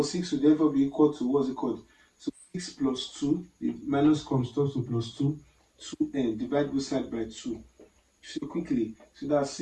6 will therefore be equal to, what's it called? So 6 plus 2, the minus comes to plus 2, 2N, divide both sides by 2. So quickly, so that's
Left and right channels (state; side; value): identical; both; correlation 1.00